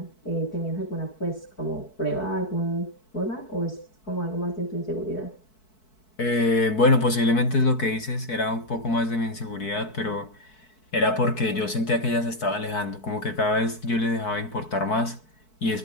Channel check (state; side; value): late; right; 4.6 ms